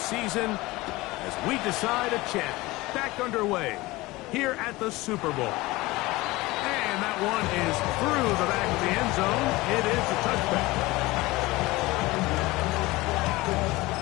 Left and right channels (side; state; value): right; quieter; 20.6 dB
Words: as we decide a champ back underway here at the Super Bowl. And that one is through the back of the end zone. It is a touchback.